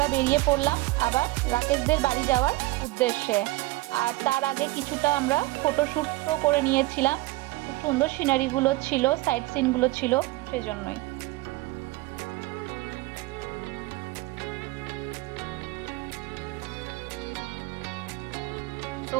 বেরিয়ে পড়লাম আবার রাকেশদের বাড়ি যাওয়ার উদ্দেশ্যে। আর তার আগে কিছুটা আমরা ফটোশ্যুটও করে নিয়েছিলাম, খুব সুন্দর সিনারিগুলো ছিল, সাইট সিনগুলো ছিল, সেজন্যই। তো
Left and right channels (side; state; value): left; quieter; 20.2 dB